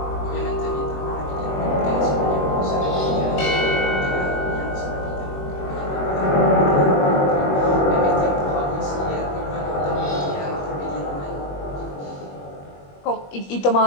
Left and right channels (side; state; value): right; late; 21 ms